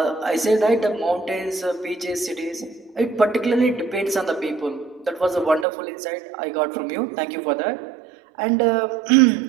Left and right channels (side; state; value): left; drops out; at 5.7 s